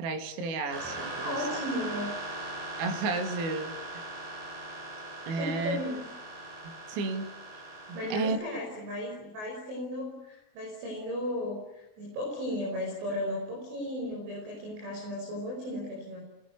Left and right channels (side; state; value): left; late; 24 ms